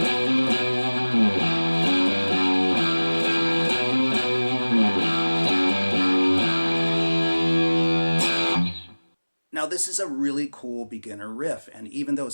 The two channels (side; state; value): both; inverted; correlation -1.00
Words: Now this is a really cool beginner riff, and even though